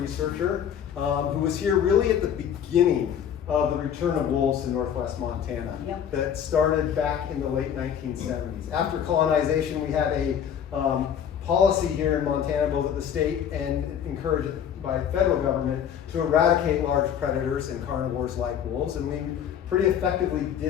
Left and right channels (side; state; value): right; quieter; 8.8 dB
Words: who was here really at the beginning of the return of wolves in northwest Montana. Yep. That started back in the late 1970s. After colonization, we had a policy here in Montana, both at the state and encouraged by federal government, to eradicate large predators and carnivores like wolves, and we pretty effectively